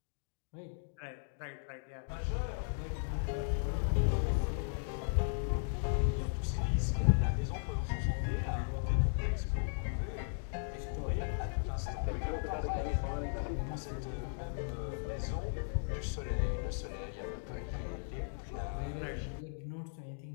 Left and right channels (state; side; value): silent; right; digital silence